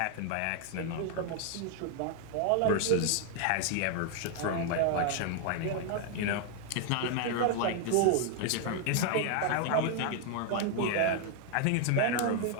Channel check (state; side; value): different; both; correlation 0.00